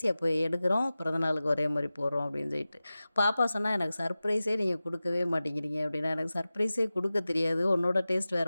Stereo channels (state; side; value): inverted; both; correlation -0.96